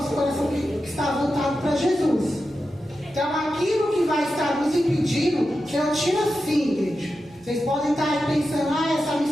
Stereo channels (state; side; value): noise; right; rumble, 29 dB below the sound